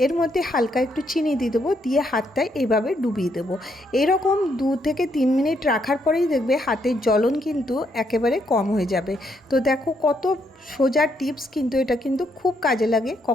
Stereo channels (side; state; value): both; normal; correlation 0.75